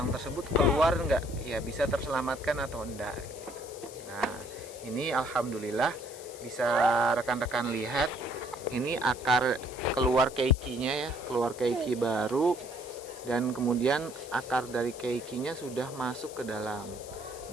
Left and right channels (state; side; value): noise; left; hiss, 16 dB below the sound